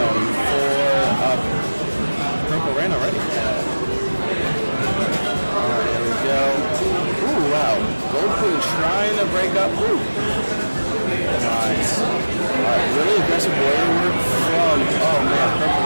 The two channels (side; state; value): both; inverted; correlation -1.00